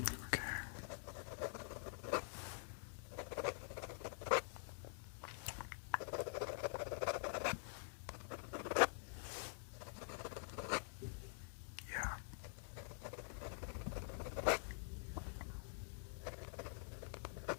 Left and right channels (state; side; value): silent; right; digital silence